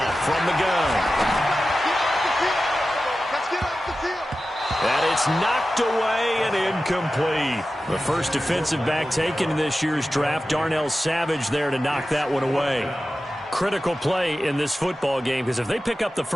from the gun. Let's get off the field. And it's knocked away and incomplete. The first defensive back taken in this year's draft, Darnell Savage there to knock that one away. Critical play in this football game because if they pick up the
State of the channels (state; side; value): normal; both; correlation 0.94